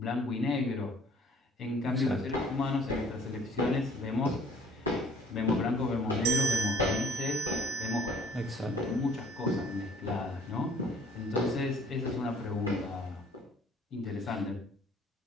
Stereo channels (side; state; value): both; normal; correlation 0.55